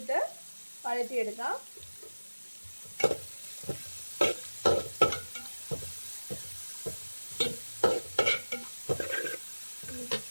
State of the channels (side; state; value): both; inverted; correlation -1.00